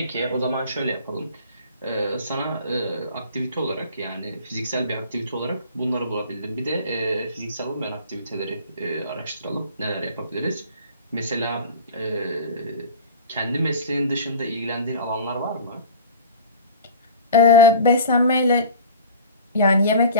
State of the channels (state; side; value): inverted; both; correlation -0.40